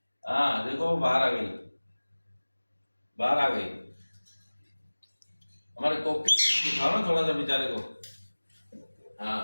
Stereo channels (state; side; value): inverted; both; correlation -1.00